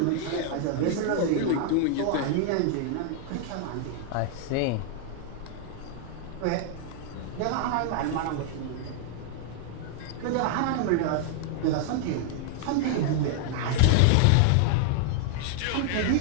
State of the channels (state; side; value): different; both; correlation 0.00